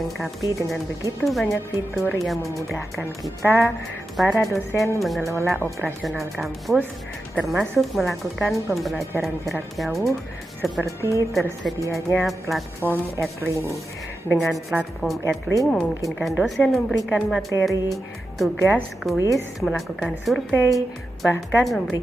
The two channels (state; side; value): normal; both; correlation 0.90